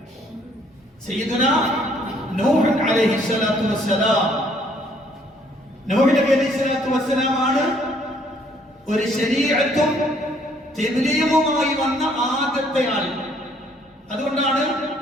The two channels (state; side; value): normal; both; correlation 0.64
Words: സയ്യിദുനാ നൂഹ് അലൈഹിസ്സലാത്തു വസ്സലാം. നൂഹ് നബി അലൈഹിസ്സലാത്തു വസ്സലാം ആണ് ഒരു ശരീഅത്തും തബ്ലീഗുമായി വന്ന ആദ്യത്തെ ആൾ. അതുകൊണ്ടാണ്